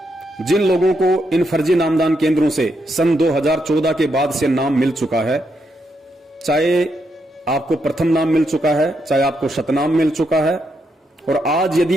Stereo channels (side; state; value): both; normal; correlation 0.80